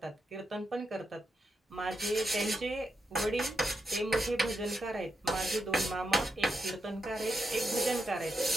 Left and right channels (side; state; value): both; normal; correlation 0.83